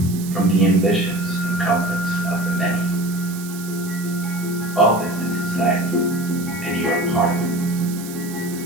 from the ambitions and conflicts of the many. All this is society, and you are part of it.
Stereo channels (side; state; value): right; noise; hiss, 14 dB below the sound